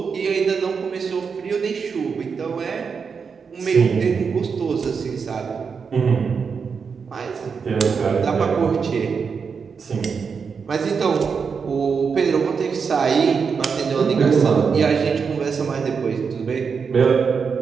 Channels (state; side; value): quieter; left; 5.8 dB